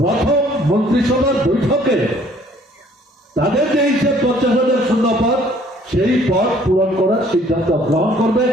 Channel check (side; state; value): both; normal; correlation 0.59